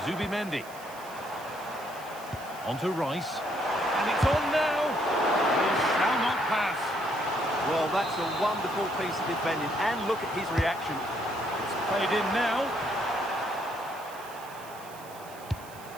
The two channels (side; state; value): right; noise; hiss, 19 dB below the sound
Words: Zubimendi. On to Rice. And it's on now. He shall not pass. Well, that's a wonderful piece of defending, and look at his reaction. It's played in now.